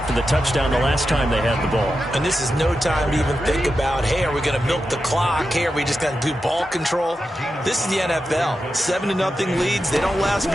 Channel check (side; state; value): both; normal; correlation 0.90